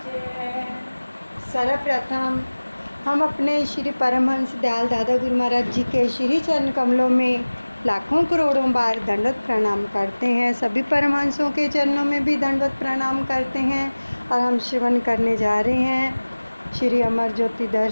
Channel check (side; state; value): both; inverted; correlation -1.00